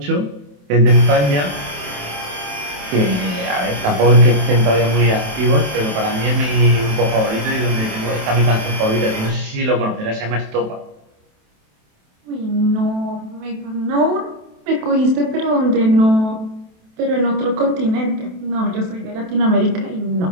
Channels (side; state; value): left; late; 27 ms